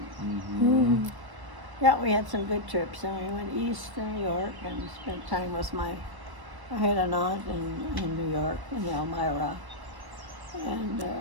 Mm-hmm. Yeah, we had some good trips. And we went east to New York and spent time with I had an aunt in New York, in Elmira, and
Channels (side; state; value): left; late; 1.2 ms